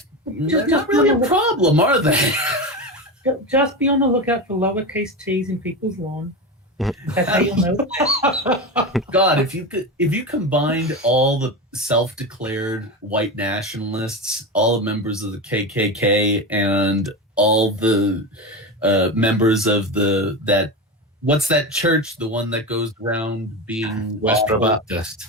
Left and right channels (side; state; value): both; normal; correlation 0.21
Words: they're not really a problem, are they? Just be on the lookout for lowercase t's in people's lawn. That's how you'll know. God, if you combined all the self-declared white nationalists, all the members of the KKK, and all the members of what's that church? The one that goes around being Westboro Baptist.